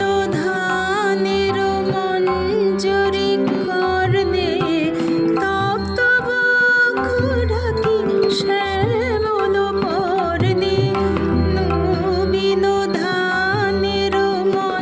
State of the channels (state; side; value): identical; both; correlation 1.00